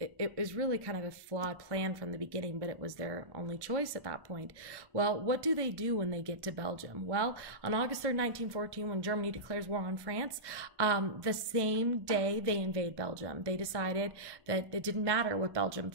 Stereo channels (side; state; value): left; late; 1.1 ms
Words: kind of a flawed plan from the beginning, but it was their only choice at that point. Well, what do they do when they get to Belgium? Well, on August 3rd, 1914, when Germany declares war on France, the same day they invade Belgium. They decided that it didn't matter what Belgium